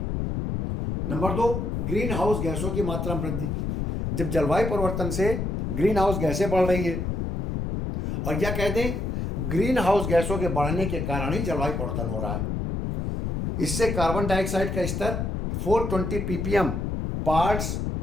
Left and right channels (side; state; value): left; noise; rumble, 2 dB below the sound